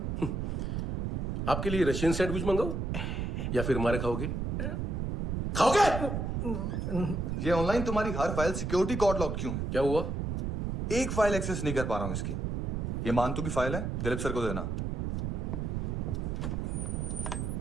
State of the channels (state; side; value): noise; right; rumble, 1 dB below the sound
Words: आपके लिए रशियन सैंडविच मंगाओ या फिर हमारे खाओगे? खाओगे? ये ऑनलाइन तुम्हारी हर फाइल सिक्योरिटी कोड लॉक क्यों? क्या हुआ? एक फाइल एक्सेस नहीं कर पा रहा हूं इसकी। ये मानतू की फाइल है, दिलीप सर को देना।